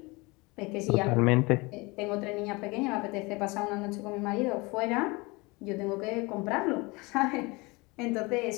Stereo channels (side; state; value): right; quieter; 25.3 dB